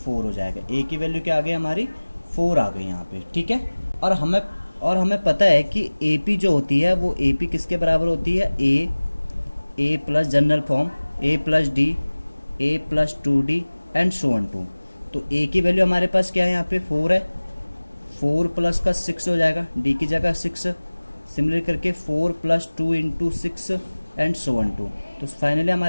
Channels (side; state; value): both; inverted; correlation -1.00